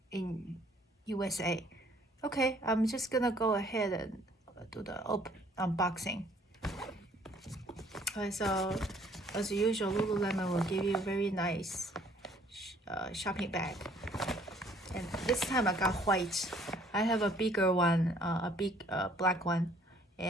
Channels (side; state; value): both; normal; correlation 0.60